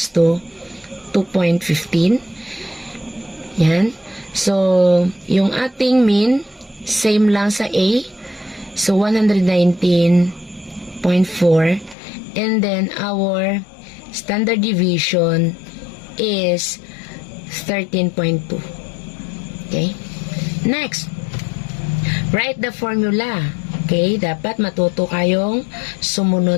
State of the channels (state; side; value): drops out; right; at 12.0 s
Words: to 2.15. Yan. So, yung ating mean, same lang sa A. So, 119.4. And then, our standard deviation is 13.2. Okay? Next, write the formula. Okay? Dapat matuto kayong